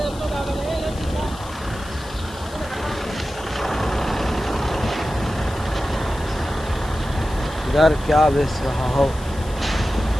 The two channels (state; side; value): noise; left; hiss, 18 dB below the sound